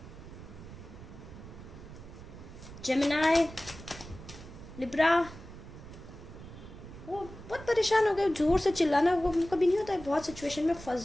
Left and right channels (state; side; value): noise; right; rumble, 15 dB below the sound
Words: Gemini, Libra. वो बहुत परेशान हो गए, जोर से चिल्लाना वो कभी नहीं होता है, बहुत सिचुएशन में